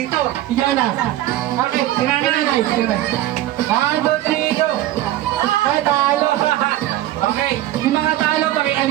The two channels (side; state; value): left; quieter; 14.4 dB